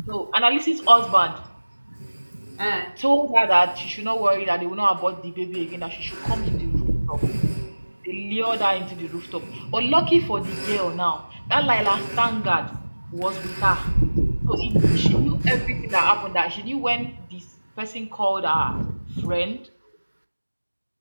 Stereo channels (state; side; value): inverted; both; correlation -1.00